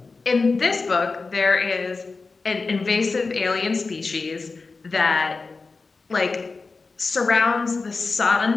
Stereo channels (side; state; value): right; quieter; 4.1 dB